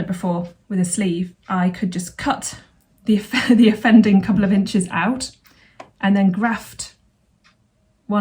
before with a sleeve. I could just cut the offending couple of inches out and then graft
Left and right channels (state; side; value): identical; both; correlation 1.00